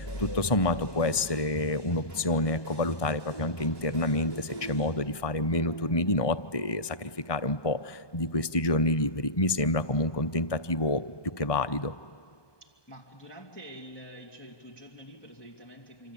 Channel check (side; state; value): right; late; 1.2 ms